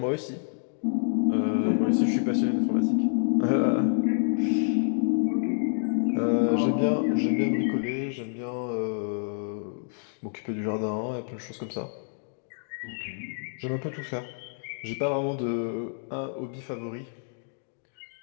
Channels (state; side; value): silent; right; digital silence